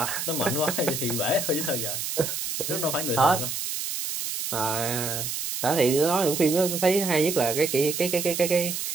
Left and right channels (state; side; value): noise; right; hiss, 4 dB below the sound